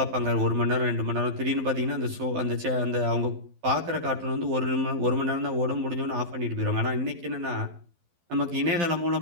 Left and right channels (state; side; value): late; left; 12 ms